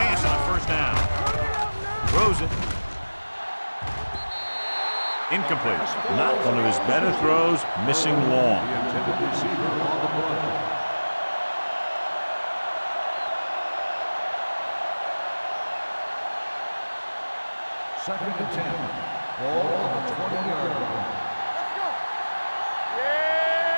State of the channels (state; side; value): inverted; both; correlation -1.00